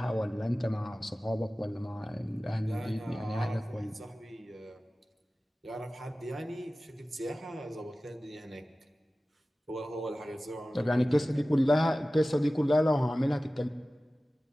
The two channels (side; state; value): both; normal; correlation 0.96